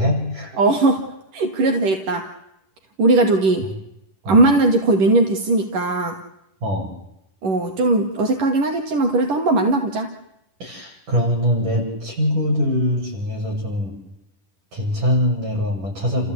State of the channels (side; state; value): left; late; 10 ms